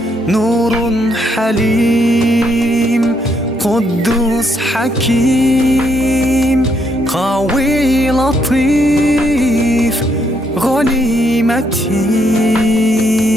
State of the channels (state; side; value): normal; both; correlation 0.74